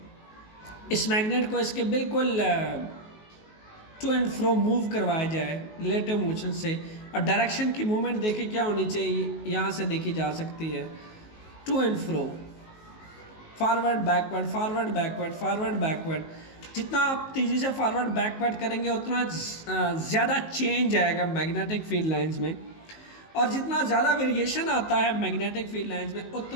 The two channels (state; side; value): late; right; 19 ms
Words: इस मैग्नेट को इसके बिल्कुल टू एंड फ्रो मूव करवाया जाए रिलेटिव मोशन से। और डायरेक्शन की मूवमेंट देखिए क्या होनी चाहिए, यहाँ से देखी जा सकती है, to and fro, forward backward, forward backward, forward backward. जितना आप तेज़ी से फॉरवर्ड बैकवर्ड करेंगे उतना ज़्यादा चेंज आएगा मैग्नेटिक फील्ड लाइंस में, और जितना ज़्यादा वेरिएशन आता है मैग्नेटिक फील्ड लाइंस में